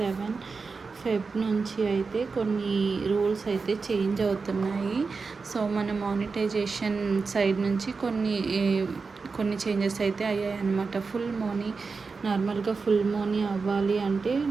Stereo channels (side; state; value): left; quieter; 4.6 dB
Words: ఫెబ్ నుంచి అయితే కొన్ని రూల్స్ అయితే చేంజ్ అవుతున్నాయి. సో మన మానిటైజేషన్ సైడ్ నుంచి కొన్ని చేంజెస్ అయితే అయ్యాయి అన్నమాట. నార్మల్గా ఫుల్ మనీ అవ్వాలి అంటే